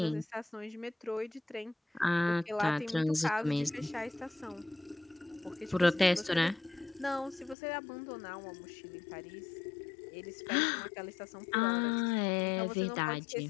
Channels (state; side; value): drops out; right; at 7.6 s